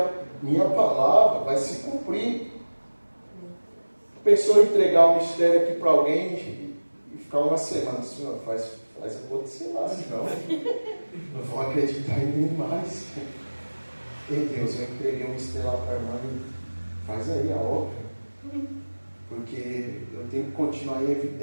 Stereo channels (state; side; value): inverted; both; correlation -1.00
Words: minha palavra vai se cumprir. Pensou em entregar o mistério aqui para alguém e ficar uma semana, Senhor, faz acontecer lá, senão não vão acreditar em mim mais. Ei Deus, eu entreguei o mistério lá para a irmã e faz aí a obra. Porque eu tenho que continuar em